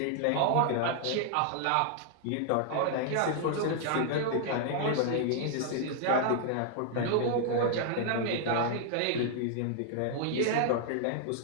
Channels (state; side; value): different; both; correlation -0.01